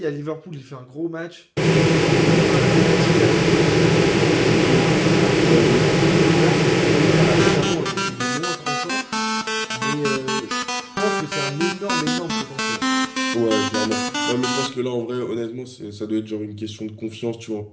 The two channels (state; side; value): identical; both; correlation 1.00